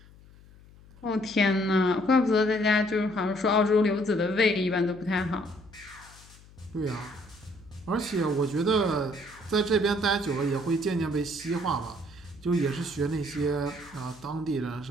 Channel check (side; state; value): left; noise; hum, 23 dB below the sound